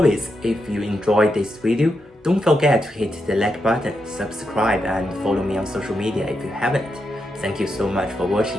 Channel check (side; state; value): both; normal; correlation 0.84